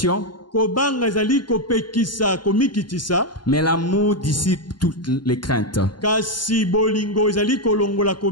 mais l'amour dissipe toutes les craintes.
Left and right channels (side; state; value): right; late; 0.71 ms